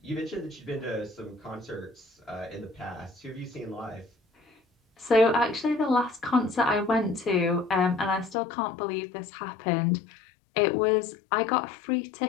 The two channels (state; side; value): drops out; right; at 8.3 s